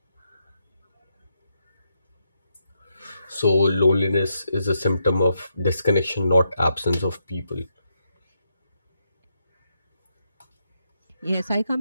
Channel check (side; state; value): both; inverted; correlation -0.80